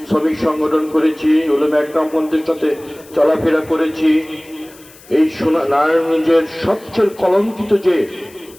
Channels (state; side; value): noise; left; hiss, 24 dB below the sound